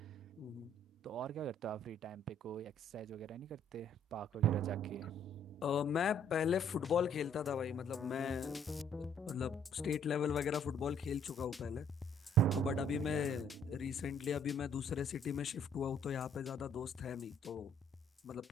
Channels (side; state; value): both; normal; correlation 0.63